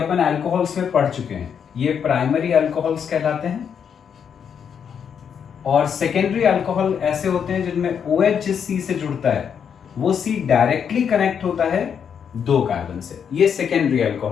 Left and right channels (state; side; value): quieter; right; 7.5 dB